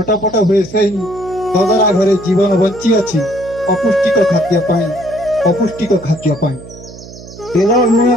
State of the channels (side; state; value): right; noise; hum, 16 dB below the sound